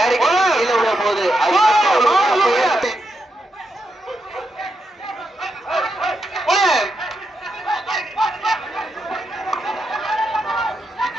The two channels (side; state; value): both; normal; correlation 0.84